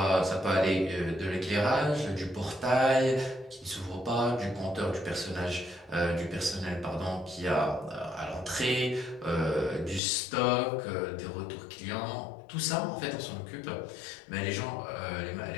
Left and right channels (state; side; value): drops out; right; at 10.0 s